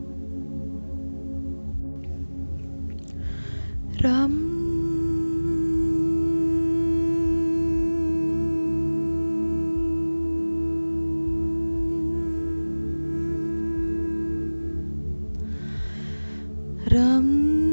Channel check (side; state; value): both; inverted; correlation -1.00